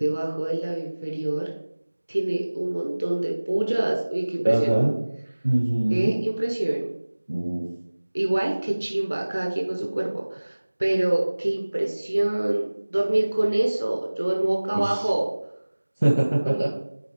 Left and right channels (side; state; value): both; inverted; correlation -1.00